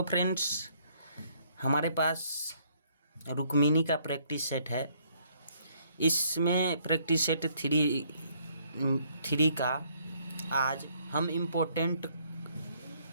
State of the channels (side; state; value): both; inverted; correlation -0.66